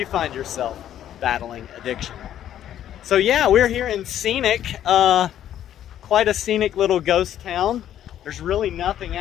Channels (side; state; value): right; quieter; 11.1 dB